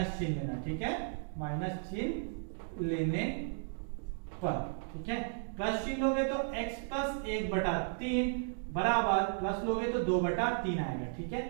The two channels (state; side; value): silent; left; digital silence